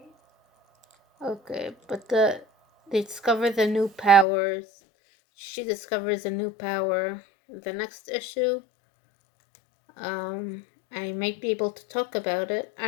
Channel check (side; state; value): right; drops out; at 4.2 s